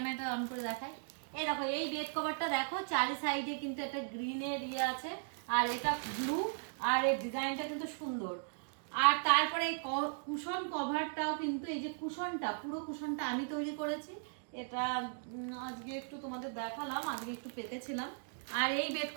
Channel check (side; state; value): left; silent; digital silence